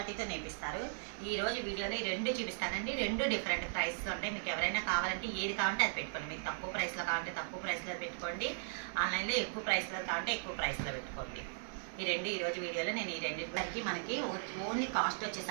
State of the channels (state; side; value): silent; left; 53 dB below the other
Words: నేపిస్తారు. ఈ రోజు వీడియోలో ఈ రెండు చూపిస్తానండి. రెండు డిఫరెంట్ ప్రైస్ ఉంటాయి. మీకు ఎవరైనా కావాలంటే ఏది కావాలంటే అది పెట్టుకోండి. మీకు తక్కువ ప్రైస్లో కావాలంటే తక్కువ ప్రైస్లో పెట్టుకోండి. ఆన్లైన్లో ఎక్కువ ప్రైస్లో కావాలంటే ఎక్కువ ప్రైస్లో పెట్టుకోండి. ఈ రెండు ఈరోజు వీడియోలో నేను ఈ రెండింటికి మనకి ఓన్లీ కాస్ట్